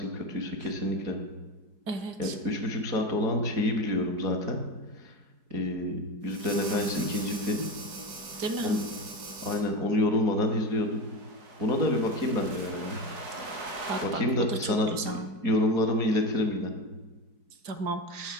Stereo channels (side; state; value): left; late; 4.7 ms